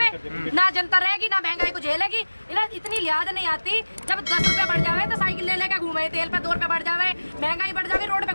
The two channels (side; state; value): both; inverted; correlation -1.00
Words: ना जनता रहेगी, ना महंगाई को झेलेगी। इन्हें इतनी लिहाज नहीं आती, जब 10 रुपए बढ़ जावे तो साइकिल ले लेके घूमे, तेल पे 2 रुपए बढ़ जावे, महंगाई बढ़ जावे, रोड पे